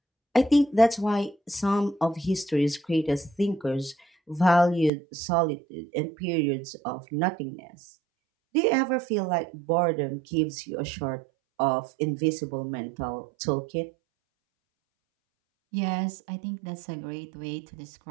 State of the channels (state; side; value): drops out; left; at 4.9 s